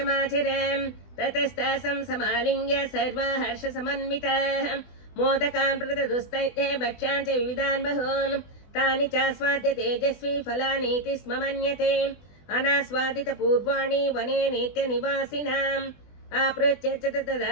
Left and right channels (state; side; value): late; right; 20 ms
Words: माचरम् ततस्तासं समालिङ्ग्य सर्वा हर्षसमन्विताः मोदकान् प्रददुस्तैः भक्ष्यान् च विविधान् बहून् तानि चास्वाद्य तेजस्वी फलानीति स्म मन्यते अनास्वादितपूर्वाणि वने नित्यनिवासिनाम् आपृच्छ्य च